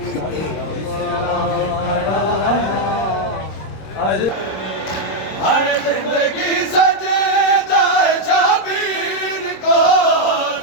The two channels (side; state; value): right; late; 26 ms